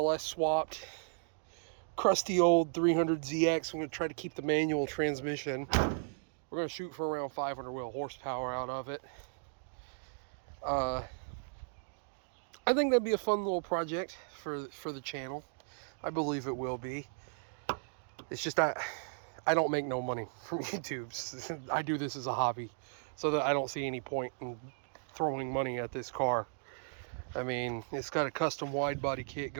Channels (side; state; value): left; silent; digital silence